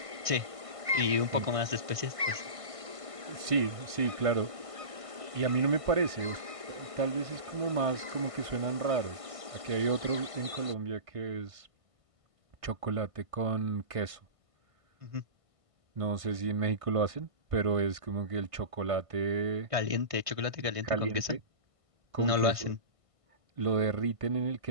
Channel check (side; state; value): left; late; 1.5 ms